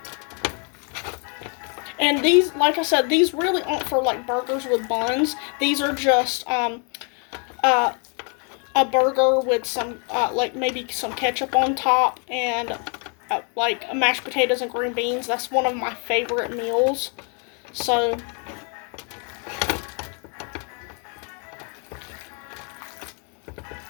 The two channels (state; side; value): quieter; right; 37.9 dB